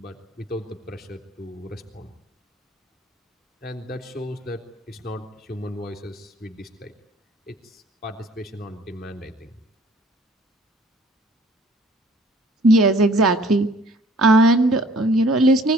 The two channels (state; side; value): normal; both; correlation 0.56